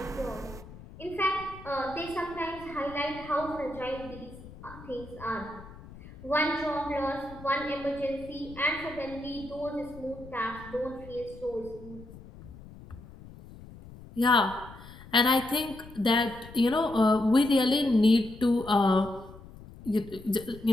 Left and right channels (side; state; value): left; noise; rumble, 17 dB below the sound